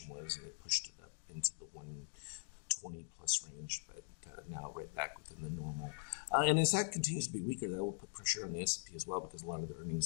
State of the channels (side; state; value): right; silent; digital silence